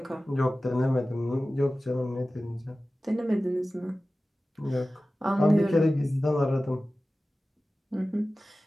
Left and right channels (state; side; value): normal; both; correlation 0.96